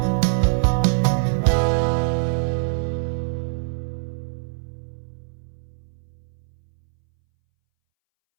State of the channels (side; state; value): left; silent; 62 dB below the other